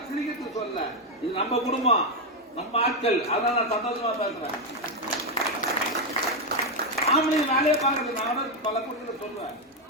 சிரிக்கிறது சொல்ல, இது நம்ம குடும்பம், நம்ம ஆட்கள், அதான் நான் சந்தோஷமா பேசுறேன். ஆம்பளை வேலையை பார்க்கறது நான் பல குடும்பத்தில் சொல்லுவேன்.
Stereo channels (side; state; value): both; normal; correlation 0.05